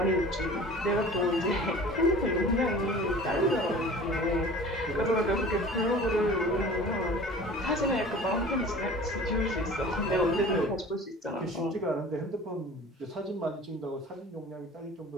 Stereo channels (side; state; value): both; normal; correlation 0.42